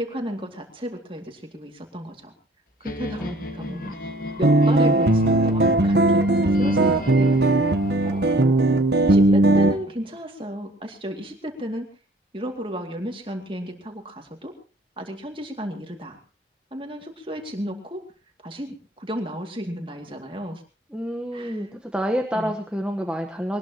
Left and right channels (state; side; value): normal; both; correlation 0.55